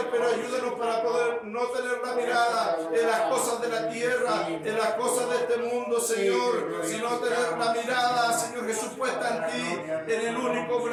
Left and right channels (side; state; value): both; identical; correlation 1.00